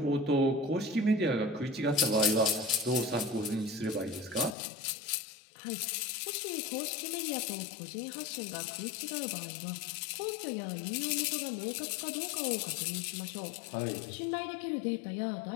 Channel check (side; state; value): right; drops out; at 4.5 s